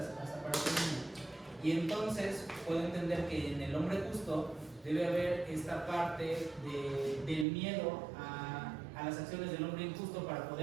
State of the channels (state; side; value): drops out; left; at 7.5 s